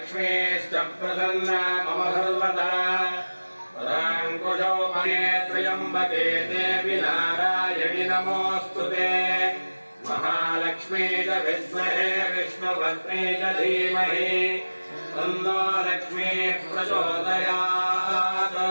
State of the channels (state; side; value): inverted; both; correlation -1.00